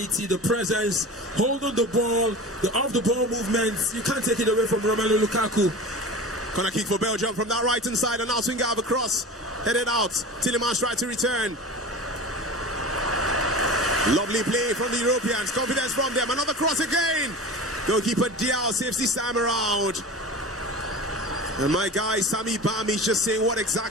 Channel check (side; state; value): both; normal; correlation 0.33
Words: the presence, holding the ball, the off-the-ball movements. You can't take it away from Romelu Lukaku. Corner kick for Belgium from that right-hand side, and now swing out across. Headed out. Tillemans tried to return. Lovely play from the Europeans. Confidence from them. Another cross again. Goalkeeper Diao saves this time around. And my guy Sami Bami is just saying what